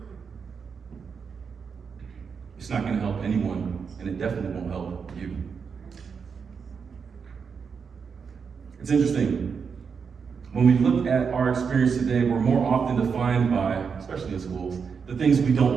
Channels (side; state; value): left; quieter; 6.0 dB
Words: it's not going to help anyone, and it definitely won't help you. It's interesting. When we look at our experience today, we're more often defined by, especially in schools, the things we don't